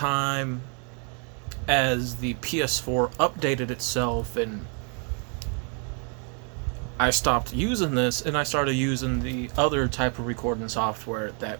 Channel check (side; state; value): left; quieter; 39.7 dB